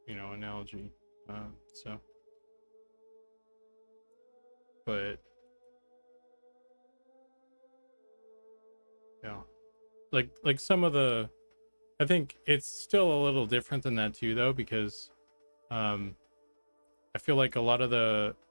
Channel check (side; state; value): both; inverted; correlation -1.00